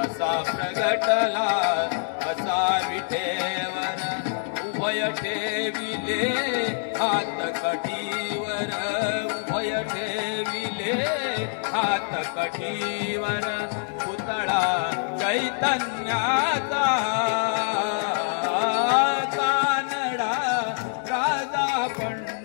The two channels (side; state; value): right; silent; 61 dB below the other